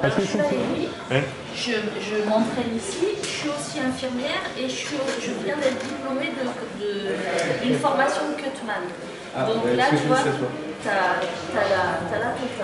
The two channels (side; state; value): both; identical; correlation 1.00